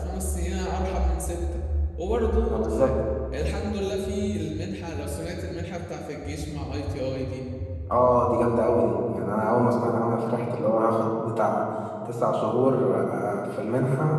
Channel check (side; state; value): both; identical; correlation 1.00